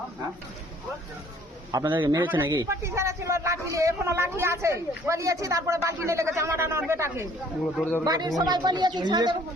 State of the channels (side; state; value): both; normal; correlation 0.57